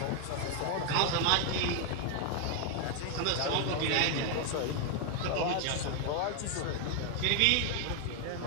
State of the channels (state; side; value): different; both; correlation 0.01